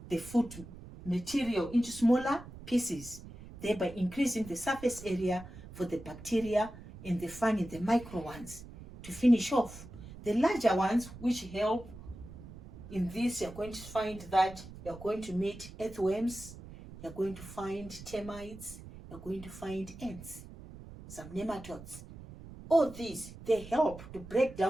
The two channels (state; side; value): noise; right; rumble, 15 dB below the sound